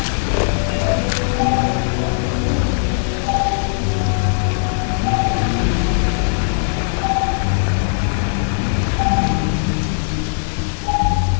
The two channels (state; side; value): silent; right; 59 dB below the other